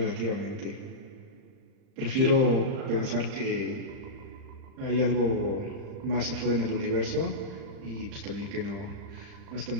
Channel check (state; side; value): late; left; 39 ms